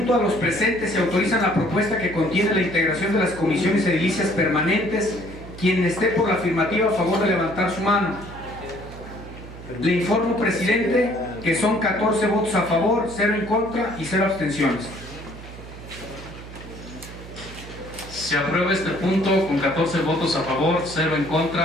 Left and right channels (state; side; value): noise; right; hum, 15 dB below the sound